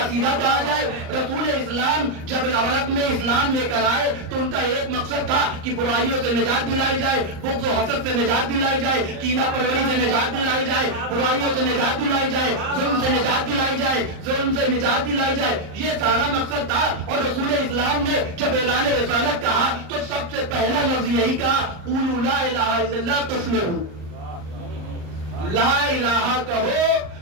سیدھا کہا جائے. رسول اسلام جب عرب میں اسلام لے کر آئے تو ان کا ایک مقصد تھا کہ برائیوں سے نجات دلائی جائے، بغض و حسد سے نجات دلائی جائے، کینہ پروری سے نجات دلائی جائے، برائیوں سے نجات دلائی جائے، ظلم سے نجات دلائی جائے، ظلم سے نجات دلائی جائے. یہ سارا مقصد تھا. اور رسول اسلام نے جب اعلان رسالت کہا تو سب سے پہلا لفظ یہی کہا، قولوا لا الہ الا اللہ تفلحوا. لا الہ کہو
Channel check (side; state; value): left; late; 39 ms